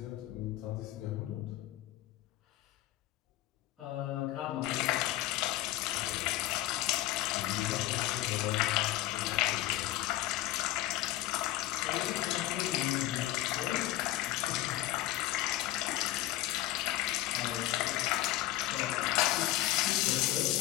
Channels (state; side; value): quieter; right; 15.2 dB